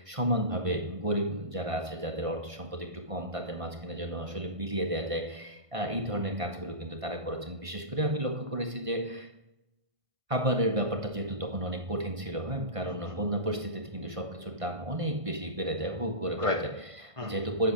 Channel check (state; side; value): late; left; 1.5 ms